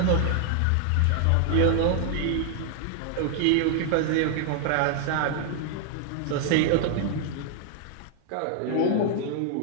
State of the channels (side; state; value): both; different; correlation 0.00